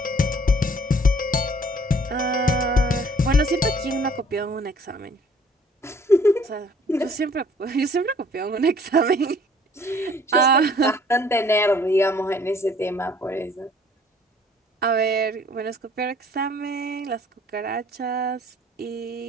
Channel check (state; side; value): normal; both; correlation 0.57